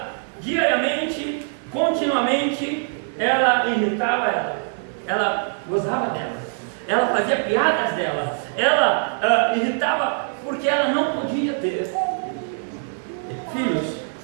diariamente, continuamente, ela irritava ela gozava dela, ela fazia piadas dela, ela irritava porque ela não podia ter filhos.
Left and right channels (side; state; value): left; silent; digital silence